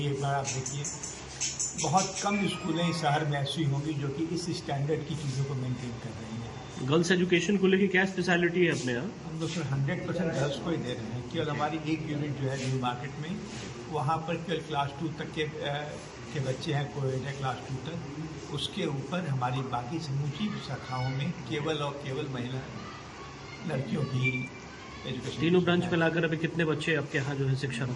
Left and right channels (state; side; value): identical; both; correlation 1.00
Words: एक बार आप देखिए। बहुत कम स्कूलें शहर में ऐसी होंगी जो कि इस स्टैंडर्ड की चीज़ों को मेंटेन कर रही हैं। गर्ल्स एजुकेशन को लेकर क्या स्पेशलिटी है अपने यहाँ? हम लोग सिर्फ 100% गर्ल्स को ही दे रहे हैं। केवल हमारी एक यूनिट जो है न्यू मार्केट में, वहाँ पर केवल क्लास 2 तक के बच्चे हैं, कोएड है क्लास 2 तक। उसके ऊपर हमारी बाकी समूची शाखाओं में केवल और केवल महिला लड़कियों की एजुकेशन। तीनों ब्रांच में लाकर अभी कितने बच्चे आपके यहाँ जो है